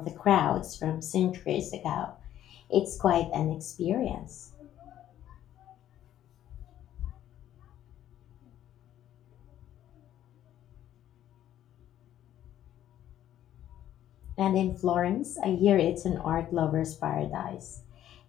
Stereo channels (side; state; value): right; quieter; 11.8 dB